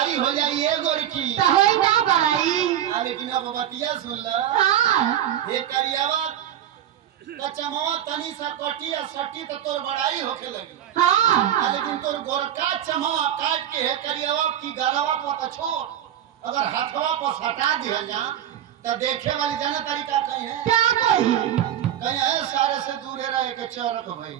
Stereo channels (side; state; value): left; quieter; 11.0 dB